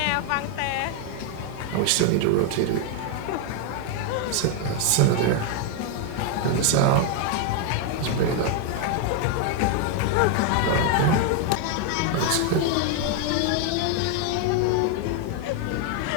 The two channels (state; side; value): different; both; correlation 0.00